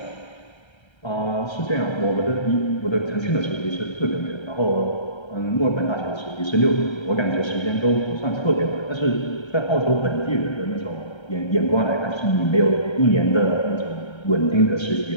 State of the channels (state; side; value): late; right; 1.3 ms